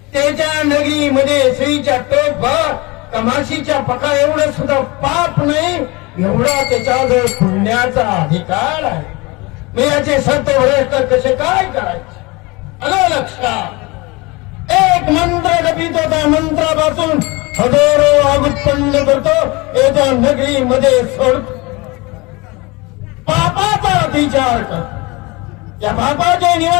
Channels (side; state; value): right; quieter; 24.6 dB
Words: त्याच्या नगरीमध्ये श्रीच्या टोकभर कमाशीच्या पका एवढं सुद्धा पाप नाही एवढा त्याच्याजवळ पुण्याचा अधिकार आहे. मी याचे सत्व भ्रष्ट कसे काय करायचे आलं लक्षात. एक मंत्र जपित होता मंत्रापासून हजारो आग उत्पन्न करतो याच्या नगरीमध्ये सोडतो. पापाचा विचार करतो. या पापाचे